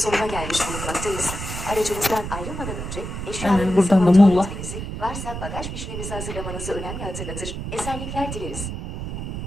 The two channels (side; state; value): right; noise; rumble, 6 dB below the sound